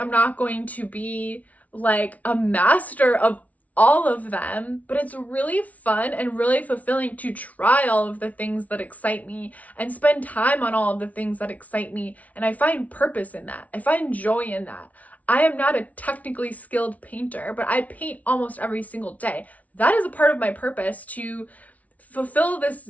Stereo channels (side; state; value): right; late; 0.070 ms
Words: not going to be like a master of all of them, but it's really fun and really fulfilling to try all of the things that excite me and spend time on all of the things that excite me. And I find purpose in that. I find joy in that. I am not a technically skilled painter, but I paint almost every single day. That is a part of my purpose, to fulfill